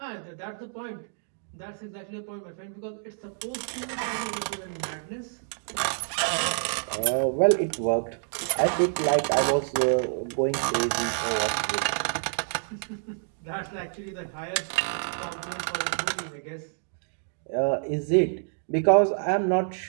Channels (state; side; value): silent; left; digital silence